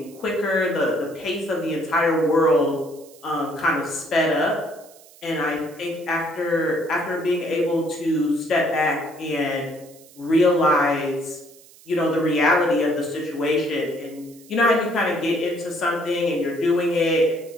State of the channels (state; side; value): noise; right; hiss, 24 dB below the sound